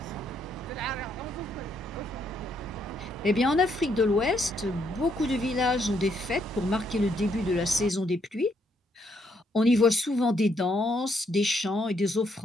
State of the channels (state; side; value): normal; both; correlation 0.73